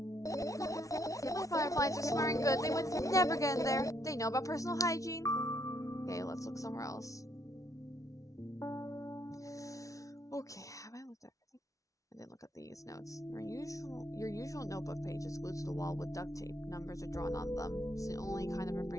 The fireflies are smelling good. They would never get in there. They know about personal hygiene. Okay, let's look somewhere else. Okay, have I looked at everything? I didn't look at these notes. Your usual notebook page is glued to the wall with duct tape. Numbers are drawn on them. It's the only kind of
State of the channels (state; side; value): late; right; 0.16 ms